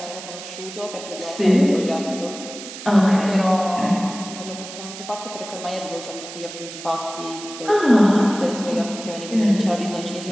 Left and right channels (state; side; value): noise; right; hiss, 12 dB below the sound